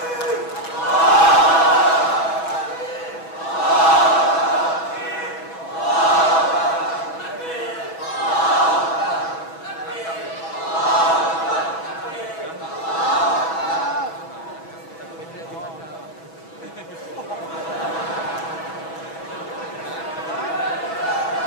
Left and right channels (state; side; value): late; right; 6.1 ms